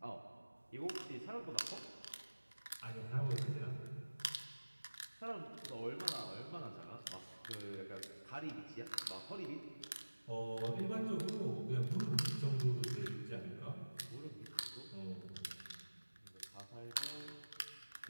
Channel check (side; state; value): both; inverted; correlation -1.00